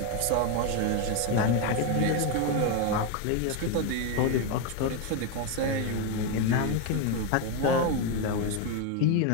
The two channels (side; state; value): both; different; correlation 0.02